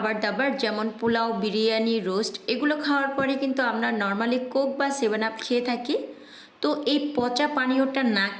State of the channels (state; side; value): identical; both; correlation 1.00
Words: দাবার যেমন পোলাও, বিরিয়ানি, রোস্ট এগুলো খাওয়ার পরে কিন্তু আমরা নর্মালি কোক বা 7 আপ খেয়ে থাকি। তো এই পচা পানীয়টা না